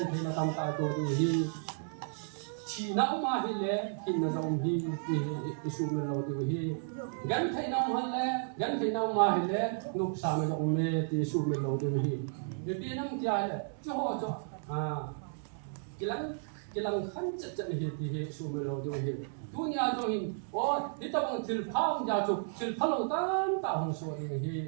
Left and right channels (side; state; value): left; silent; digital silence